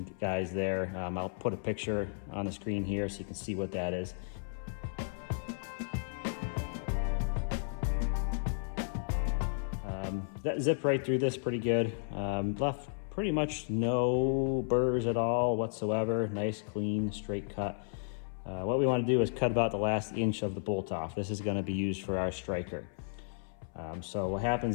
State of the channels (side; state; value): right; silent; 55 dB below the other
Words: guys there. I'll put a picture on the screen here so you can see what that is. That zipped right through this pretty good. Left pretty much no burrs at all whatsoever. Nice, clean, straight cut. What we want to do is cut about the last inch of the bolt off. This is going to be used for our striker. So what